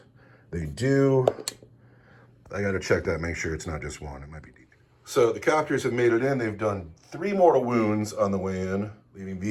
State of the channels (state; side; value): identical; both; correlation 1.00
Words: They do. I got to check that, make sure it's not just one. It might be deep. So the copters have made it in. They've done 3 mortal wounds on the way in, leaving